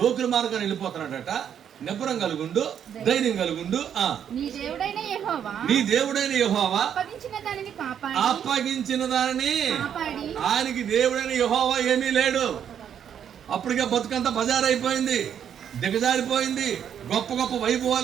మార్గాన్ని వెళ్ళిపోతున్నాడట. నిబ్బరం కలుగుండు, ధైర్యం కలుగుండు. నీ దేవుడైన యెహోవా అప్పగించిన దానిని, ఆయనకి దేవుడైన యెహోవా ఏమీ లేడు. అప్పటికే బతుకంతా బజారైపోయింది, దిగజారిపోయింది. గొప్ప గొప్ప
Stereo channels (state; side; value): quieter; left; 8.8 dB